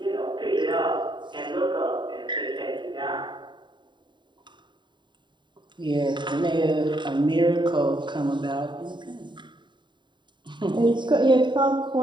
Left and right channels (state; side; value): late; left; 0.23 ms